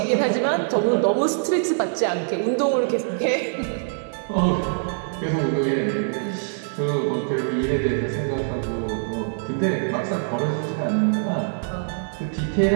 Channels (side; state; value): left; silent; digital silence